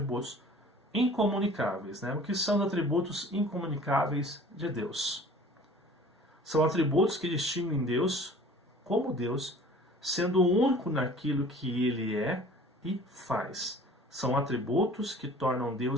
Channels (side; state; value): both; normal; correlation 0.46